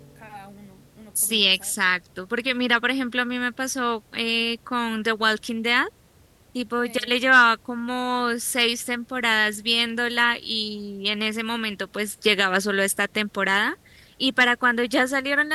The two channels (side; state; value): both; identical; correlation 1.00